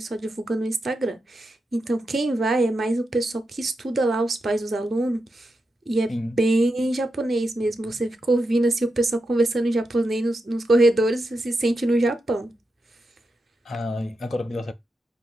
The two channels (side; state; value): both; normal; correlation 0.87